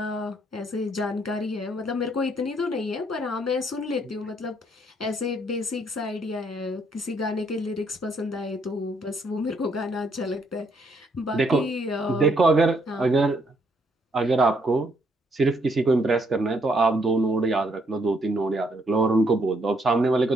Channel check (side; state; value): both; normal; correlation 0.71